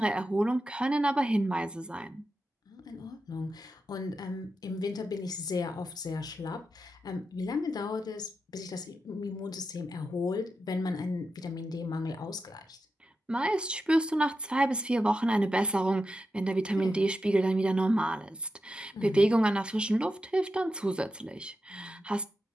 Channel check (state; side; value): normal; both; correlation 0.88